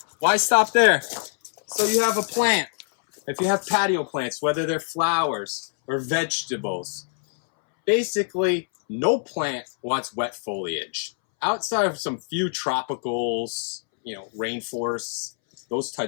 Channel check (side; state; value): right; silent; 62 dB below the other